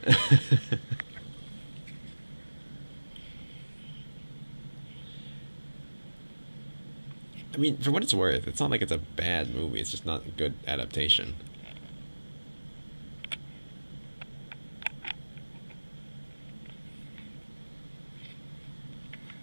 I mean, for what it's worth, it's not like it's a bad movie. It's just not a good adaptation.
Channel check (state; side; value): inverted; both; correlation -1.00